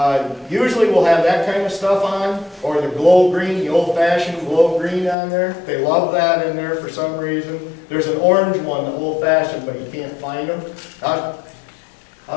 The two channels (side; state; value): right; drops out; at 5.2 s